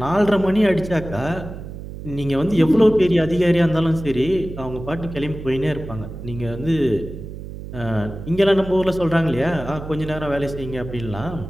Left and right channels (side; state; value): right; noise; hum, 11 dB below the sound